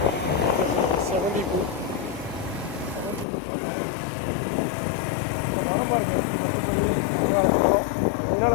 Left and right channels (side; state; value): right; drops out; at 3.2 s